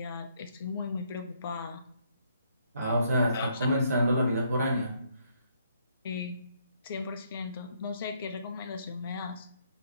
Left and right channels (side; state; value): both; inverted; correlation -0.70